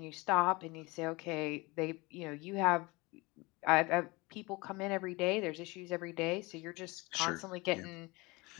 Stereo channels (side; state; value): right; quieter; 24.1 dB